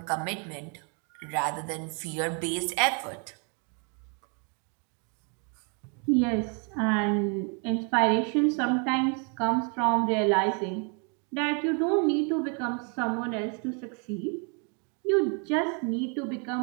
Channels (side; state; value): left; quieter; 37.4 dB